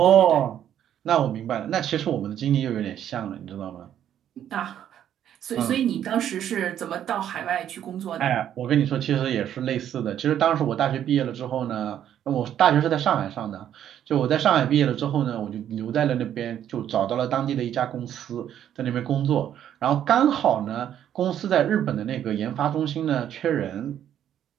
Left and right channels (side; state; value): left; quieter; 10.4 dB